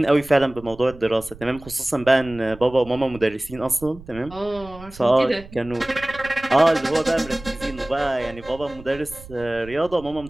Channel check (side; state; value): right; noise; rumble, 18 dB below the sound